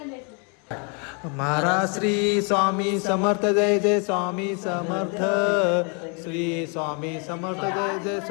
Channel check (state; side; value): quieter; right; 36.1 dB